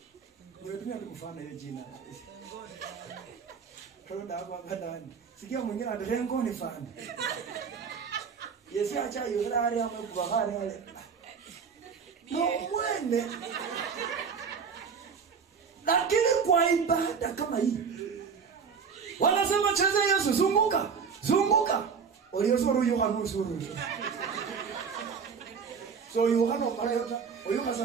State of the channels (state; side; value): quieter; left; 6.1 dB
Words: Nimetumia kumfana hiyo jina. Baroda hapa ndani. Sikia mwingine adarengo ni fana. Yesu acha yurari amekubahari wale. No mwende. Lakini kwa ibada kama hii wanasema cheza Yesu zunguka zunguka oliyosoro Yohana usuru so Yohana parayota oyuka